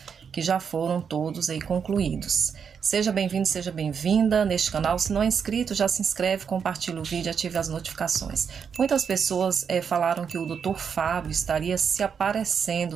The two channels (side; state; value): left; quieter; 6.8 dB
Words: que já foram todos aí concluídos. Seja bem-vindo, seja bem-vinda neste canal. Se não é inscrito, já se inscreve, compartilha o vídeo, ative as notificações. Muitas pessoas falaram que o Dr. Fábio estaria se